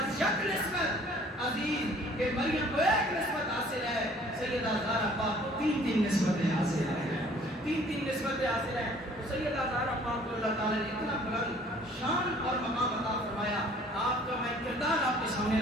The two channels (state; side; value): normal; both; correlation 0.55